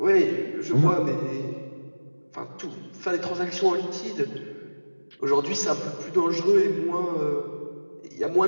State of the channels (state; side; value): inverted; both; correlation -1.00